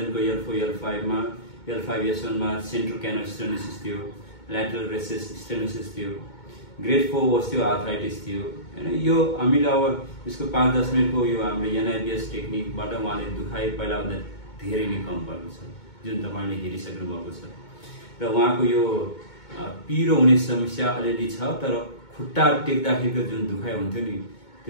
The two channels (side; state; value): right; late; 2.2 ms